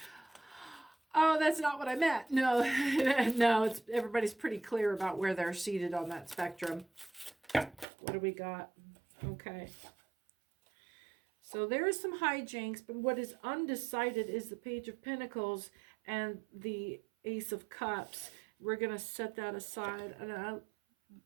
oh, that's not what I meant. No, no, everybody's pretty clear about where they're seated on that spectrum. What do we got? Okay. So there is some hijinks, but what is undecided is the Page of Pentacles and the Ace of Cups. We're going to set that aside. And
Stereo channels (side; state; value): left; drops out; at 7.9 s